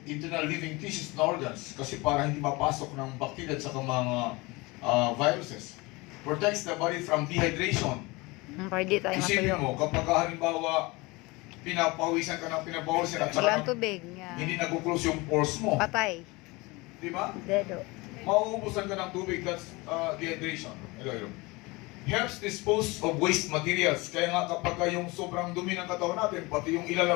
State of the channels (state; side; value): quieter; right; 23.9 dB